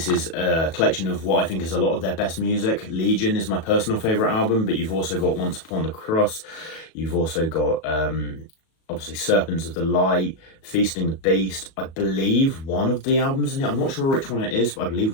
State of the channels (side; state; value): right; late; 37 ms